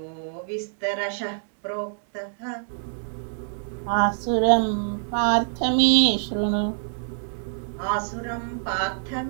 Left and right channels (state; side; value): silent; left; digital silence